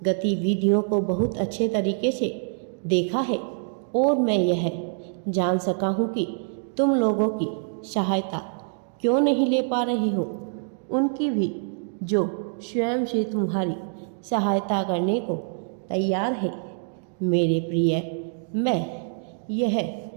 गतिविधियों को बहुत अच्छे तरीके से देखा है और मैं यह जान सका हूँ कि तुम लोगों की सहायता क्यों नहीं ले पा रहे हो। उनकी भी जो स्वयं से तुम्हारी सहायता करने को तैयार है। मेरे प्रिय, मैं यह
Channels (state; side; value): silent; left; digital silence